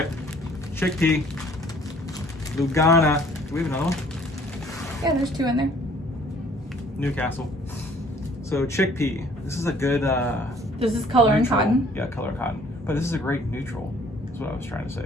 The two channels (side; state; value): both; normal; correlation 0.57